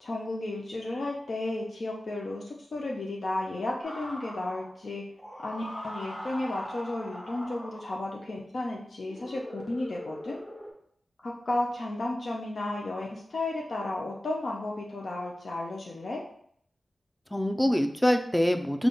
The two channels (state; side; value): normal; both; correlation 0.96